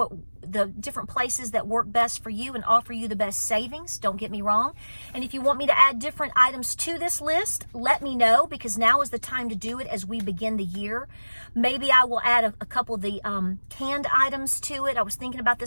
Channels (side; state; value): both; inverted; correlation -1.00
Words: the different places that work best for you and offer you the best savings. Don't get me wrong. And if you want me to add different items to this list, let me know, because now is the time to do it as we begin the year. Maybe I will add a couple of the canned items to it. I was thinking about